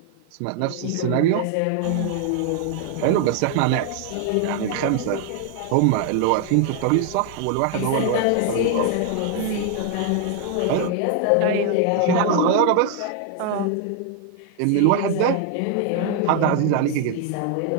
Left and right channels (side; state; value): both; different; correlation 0.00